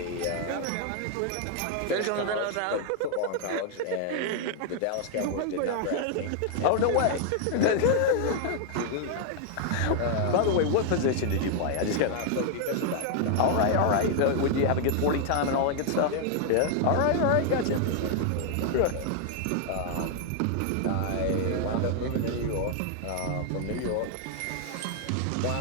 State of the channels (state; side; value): different; both; correlation 0.00